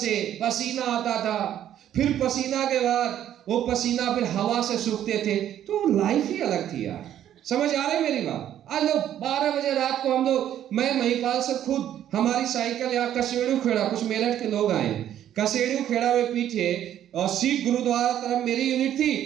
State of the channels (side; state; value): left; quieter; 11.0 dB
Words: पसीना आता था, फिर पसीना के बाद वो पसीना फिर हवा से सूखते थे। तो लाइफ ही अलग थी यार। समझ आ रही मेरी बात? आज लोग 12 बजे रात को हम लोग, मैं महिपाल से खुद, हमारी साइकिल यहाँ कसेड़ू खेड़ा, कुछ मेरठ के लोग आए, कसेड़ू खेड़ा में पीछे और सिख गुरुद्वारा तरफ मेरी यूनिट